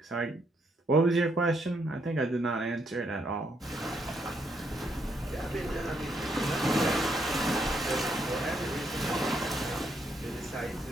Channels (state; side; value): normal; both; correlation 0.75